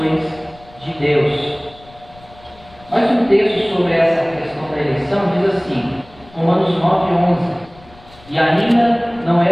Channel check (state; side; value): noise; left; rumble, 24 dB below the sound